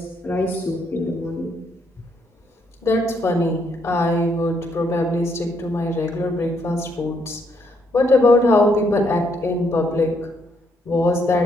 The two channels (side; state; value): both; normal; correlation 0.73